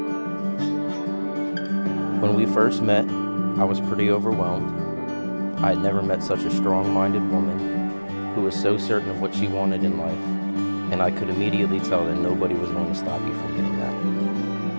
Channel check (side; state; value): both; inverted; correlation -1.00